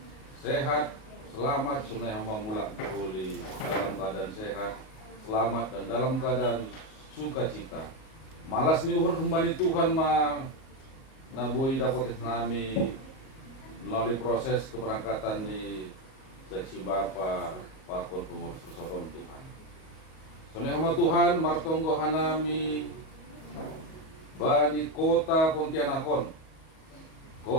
sehat selamat sunai hamba mulak boleh dalam keadaan sehat selamat dan dalam keadaan sukacita. Malas ni uhur kembali Tuhan ma na boy dapat nami melalui proses keberangkatan di seksi Bapa pakon pengurus persatuan Tuhan. Sunai hamba Tuhan martonggo hanami bani kota Pontianakon,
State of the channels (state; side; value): late; right; 38 ms